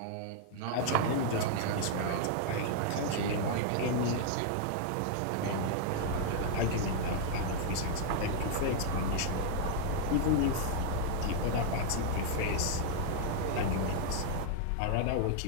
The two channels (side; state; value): both; different; correlation 0.00